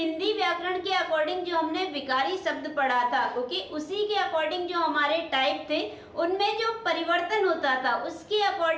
व्याकरण के अकॉर्डिंग जो हमने विकारी शब्द पढ़ा था, ओके, उसी के अकॉर्डिंग जो हमारे टाइप थे उनमें जो परिवर्तन होता था उसके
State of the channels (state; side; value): identical; both; correlation 1.00